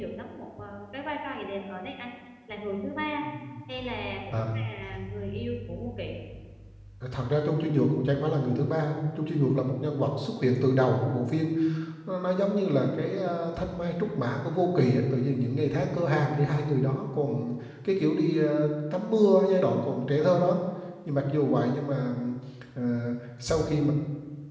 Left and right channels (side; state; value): both; identical; correlation 1.00